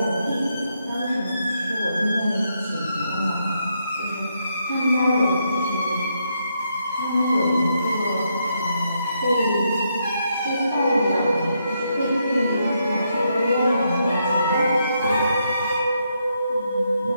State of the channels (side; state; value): both; inverted; correlation -0.78